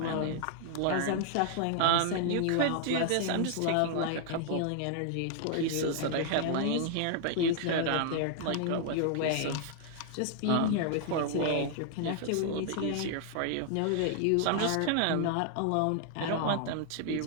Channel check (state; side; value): different; both; correlation 0.00